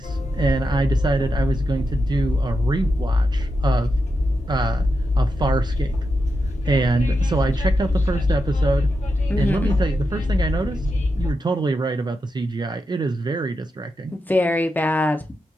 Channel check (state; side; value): normal; both; correlation 0.87